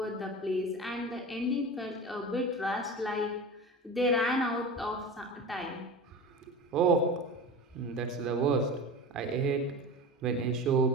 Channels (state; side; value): normal; both; correlation 0.31